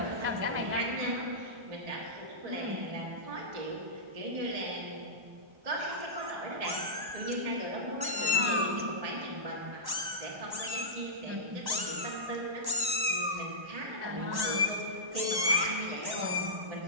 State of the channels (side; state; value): left; late; 1.1 ms